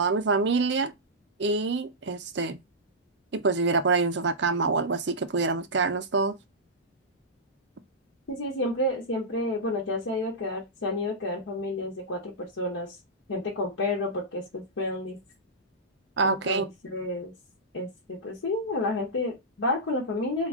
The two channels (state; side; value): normal; both; correlation -0.13